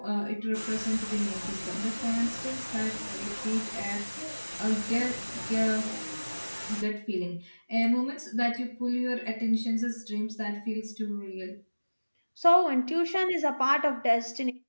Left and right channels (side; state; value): both; inverted; correlation -1.00